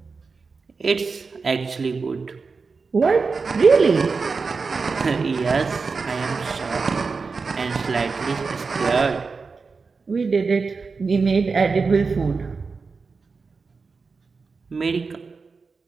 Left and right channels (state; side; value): quieter; left; 4.6 dB